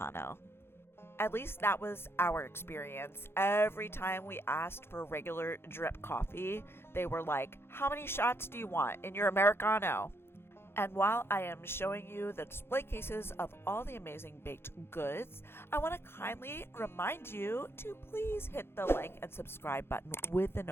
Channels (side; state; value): right; late; 0.11 ms